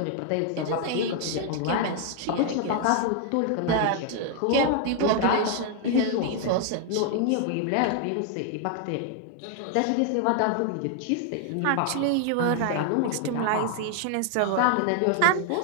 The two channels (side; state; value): both; different; correlation 0.00